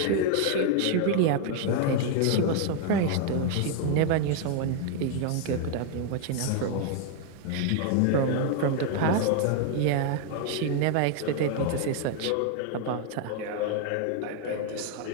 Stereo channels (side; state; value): both; different; correlation 0.00